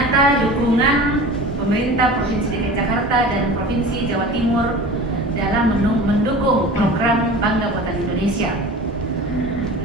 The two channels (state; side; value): normal; both; correlation 0.37